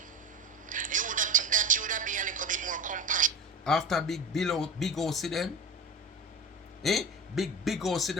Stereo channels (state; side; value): normal; both; correlation 0.30